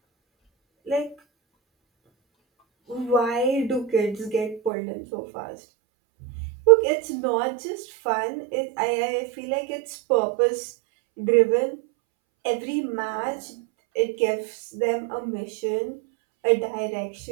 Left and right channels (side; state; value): left; drops out; at 4.7 s